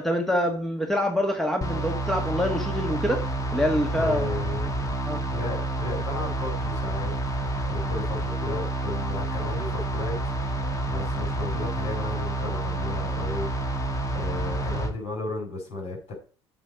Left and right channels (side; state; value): both; normal; correlation 0.62